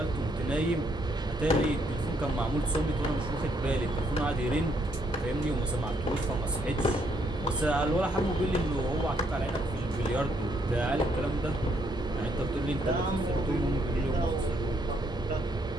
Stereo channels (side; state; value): both; normal; correlation 0.72